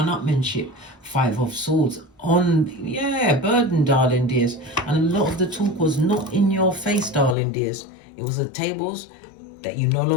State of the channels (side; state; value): right; drops out; at 7.4 s